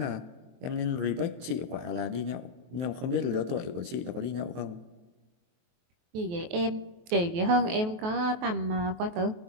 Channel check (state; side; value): late; left; 23 ms